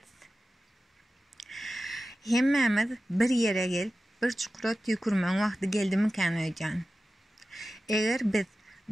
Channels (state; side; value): normal; both; correlation 0.94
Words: Hemmemiz bir yere gelip, bir çukura tükürmen vakti geldi mi kan öýdän. Eger biz